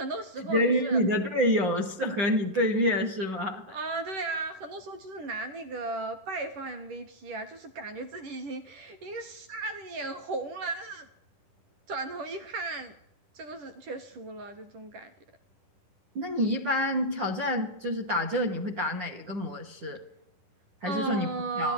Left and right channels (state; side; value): late; left; 10 ms